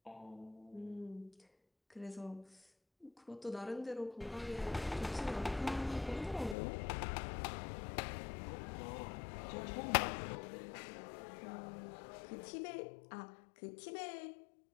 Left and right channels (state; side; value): drops out; right; at 6.6 s